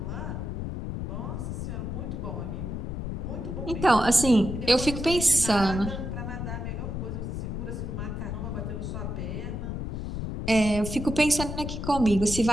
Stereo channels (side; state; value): left; noise; rumble, 4 dB below the sound